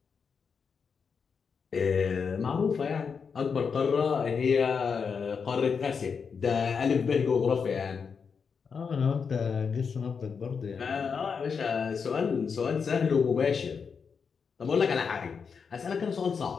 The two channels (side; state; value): right; quieter; 5.9 dB